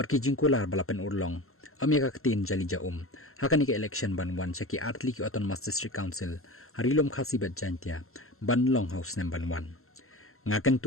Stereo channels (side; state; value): right; late; 0.62 ms